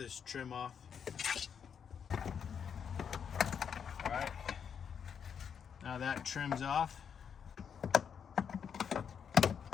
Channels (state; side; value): quieter; right; 7.4 dB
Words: trim off. All right, now that trim's off.